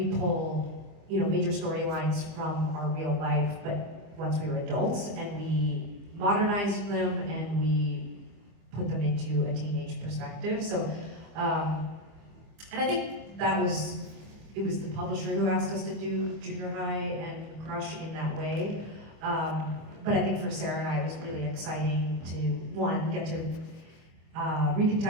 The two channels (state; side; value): late; left; 25 ms